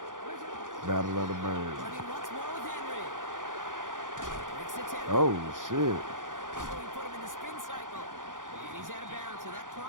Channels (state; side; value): late; left; 0.88 ms